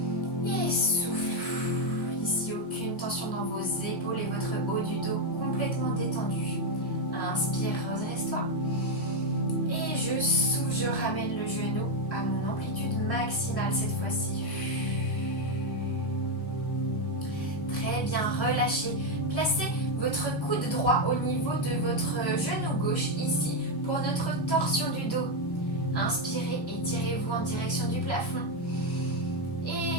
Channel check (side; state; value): right; late; 1.1 ms